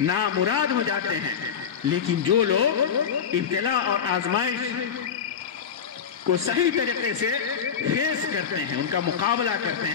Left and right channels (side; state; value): right; quieter; 7.4 dB